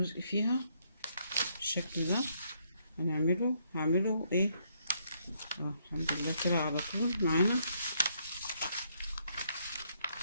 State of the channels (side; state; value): both; inverted; correlation -0.72